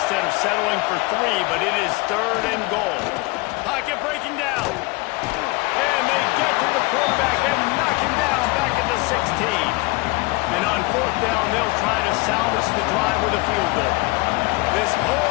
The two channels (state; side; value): quieter; right; 24.8 dB